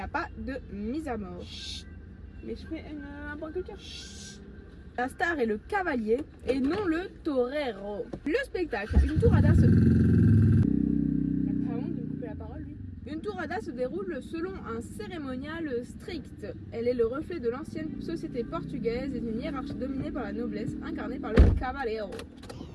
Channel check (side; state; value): both; identical; correlation 1.00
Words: pas de mise à mort. Mais je fais un point culture. La star est le cavalier et non le torero. Le spectacle, une tourada se... Pardon de me couper la parole, lui. Une tourada se déroule selon un cérémonial strict. Elle est le reflet de l'ancienne société portugaise et d'une hiérarchie dominée par la noblesse, incarnée par le cavaleiro.